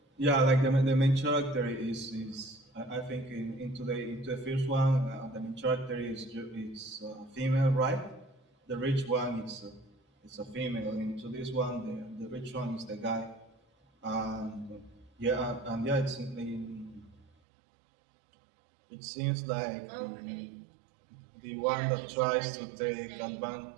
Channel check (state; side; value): drops out; left; at 17.2 s